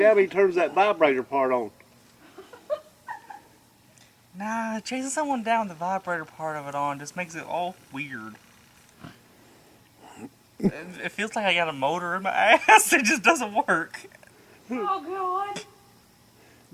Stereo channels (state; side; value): identical; both; correlation 1.00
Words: he turns that vibrator part on. Nah, chasing someone down with the vibrator part of it on just makes it all weird. It feels like I got a motor in my ass. It just doesn't work. Oh, God.